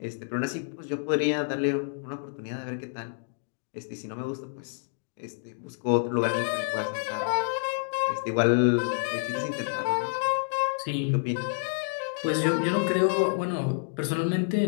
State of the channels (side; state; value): right; silent; digital silence